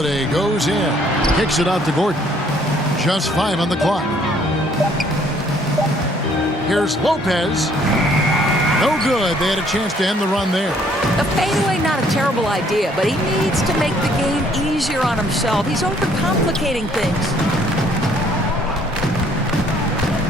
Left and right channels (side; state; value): both; normal; correlation 0.62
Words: goes in. Kicks it out to Gordon. Just 5 on the clock. Here's Lopez. No good. They had a chance to end the run there. The fadeaway, not a terrible idea, but he needs to make the game easier on himself. He's overcomplicating things.